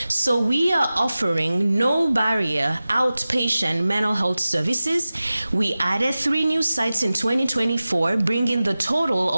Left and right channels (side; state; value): both; inverted; correlation -0.96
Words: So we are offering no barrier outpatient mental health services. We added 3 new sites in 2024, bringing the total